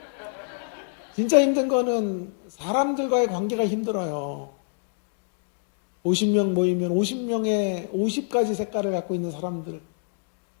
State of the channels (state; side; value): silent; right; digital silence